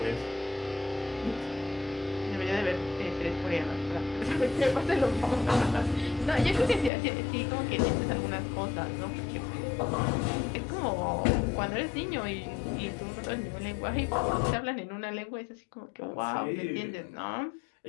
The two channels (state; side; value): drops out; right; at 6.9 s